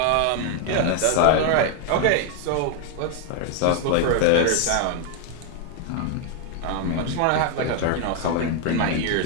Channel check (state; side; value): different; both; correlation 0.01